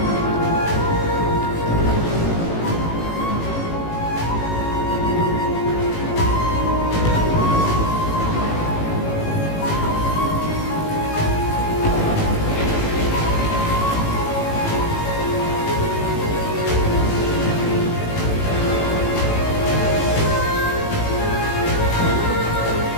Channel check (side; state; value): right; late; 18 ms